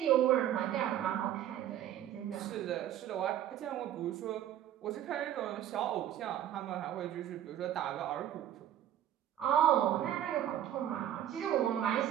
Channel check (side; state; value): left; quieter; 11.3 dB